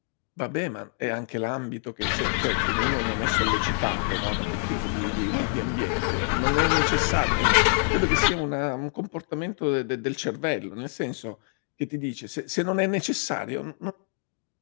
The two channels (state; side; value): silent; right; 58 dB below the other